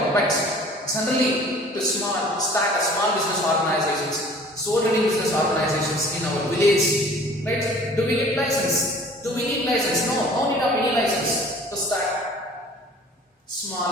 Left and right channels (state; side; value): normal; both; correlation 0.49